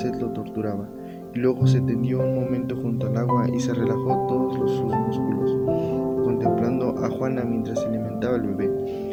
lo torturaba, y luego se tendió un momento junto al agua y se relajó todos sus músculos, contemplando a Juana mientras se alimentaba el bebé,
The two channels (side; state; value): both; identical; correlation 1.00